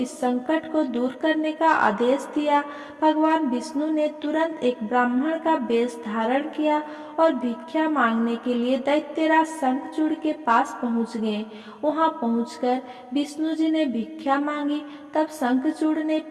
संकट को दूर करने का आदेश दिया। भगवान विष्णु ने तुरंत एक ब्राह्मण का वेश धारण किया और भिक्षा मांगने के लिए दैत्यराज शंखचूड़ के पास पहुंच गए। वहां पहुंचकर विष्णु जी ने भिक्षा मांगी। तब शंखचूड़ ने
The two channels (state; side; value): identical; both; correlation 1.00